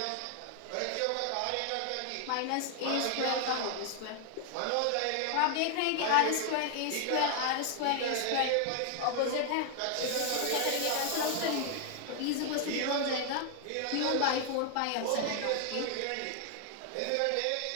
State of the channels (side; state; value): both; different; correlation 0.00